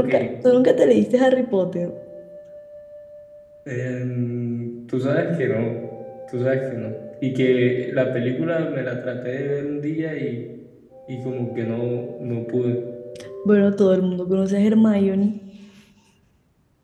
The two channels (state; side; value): identical; both; correlation 1.00